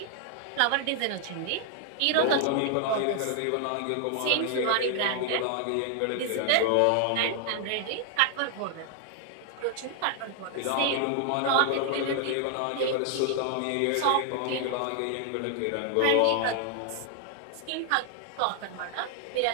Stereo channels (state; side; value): different; both; correlation 0.00